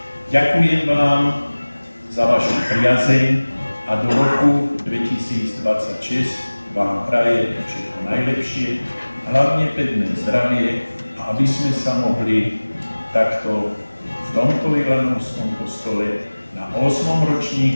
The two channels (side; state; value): both; inverted; correlation -1.00